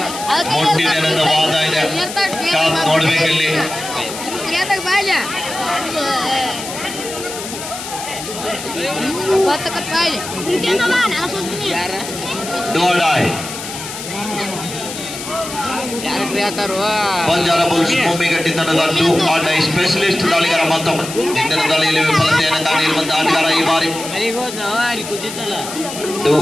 ವಾದ ಇದೆ, ಕಾದ್ ನೋಡ್ಬೇಕಲ್ಲಿ. ಡೋಡಾಯ್ ಬಂಜಾರ ಬುಲ್ಸ್ ಭೂಮಿಗಟ್ಟಿ ತಂಡದ ಟೂ ಆಟೈ ಸ್ಪೆಷಲಿಸ್ಟ್ ದಾಳಿಗಾರ. ಮತ್ತೊಮ್ಮೆ ಇಂದಿನ ದಾಳಿಯಲ್ಲಿ ವಿಫಲತೆಯನ್ನು ಕಾಣಿರುವಂತಹ ಆಟಗಾರ ಈ ಬಾರಿ. ಟೂ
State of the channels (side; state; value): left; noise; hiss, 9 dB below the sound